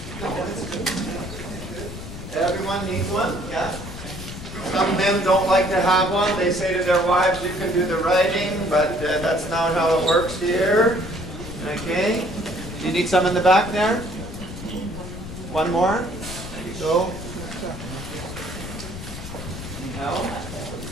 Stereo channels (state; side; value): noise; left; rumble, 10 dB below the sound